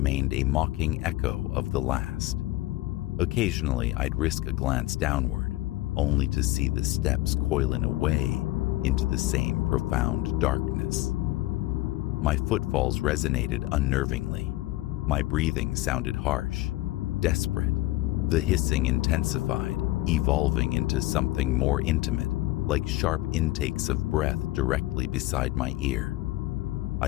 a mocking echo of the last. Occasionally, I'd risk a glance downward, only to see the steps coiling away into the same profound darkness. My footfalls resonated unnervingly. My breathing sounded harsh, desperate. The hissing intensified, evolving into something more intimate, like sharp intakes of breath directly beside my ear.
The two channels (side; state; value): right; quieter; 17.6 dB